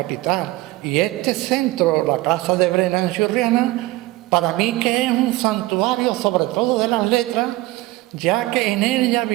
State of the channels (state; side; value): quieter; left; 18.8 dB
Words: Y este centro, la Casa de Brena en Churriana, para mí que es un santuario sobre todo de las letras, ya que en ella